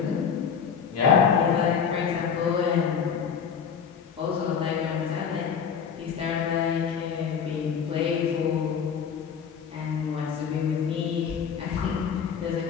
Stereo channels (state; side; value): quieter; right; 7.0 dB